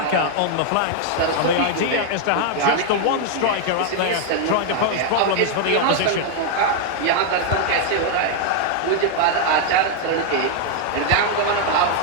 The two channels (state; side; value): different; both; correlation 0.00